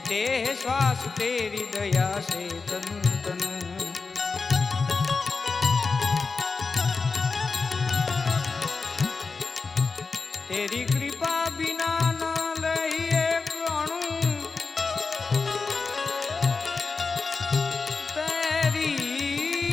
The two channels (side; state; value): right; quieter; 4.4 dB